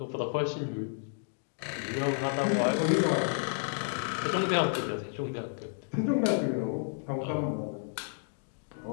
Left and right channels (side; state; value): right; silent; digital silence